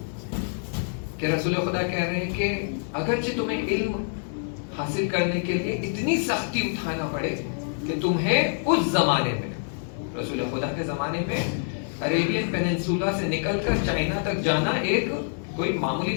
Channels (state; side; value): silent; right; digital silence